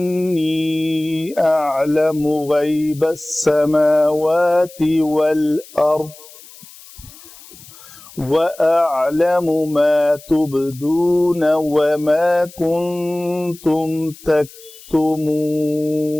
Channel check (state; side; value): noise; left; hiss, 20 dB below the sound